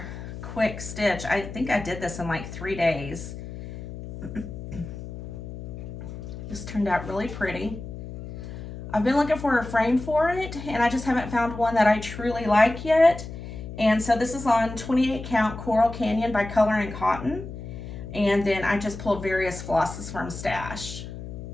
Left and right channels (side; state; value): left; noise; hum, 10 dB below the sound